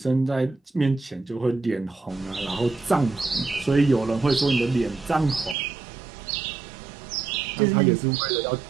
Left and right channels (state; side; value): drops out; left; at 5.6 s